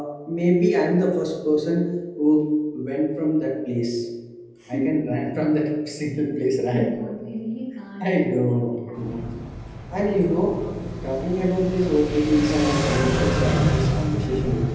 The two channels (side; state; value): both; identical; correlation 1.00